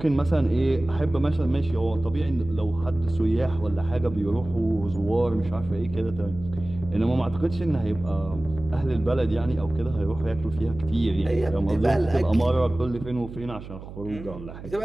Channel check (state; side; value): noise; right; hum, 13 dB below the sound